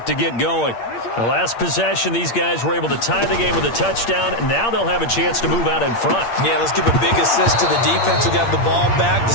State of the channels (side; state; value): right; late; 8.6 ms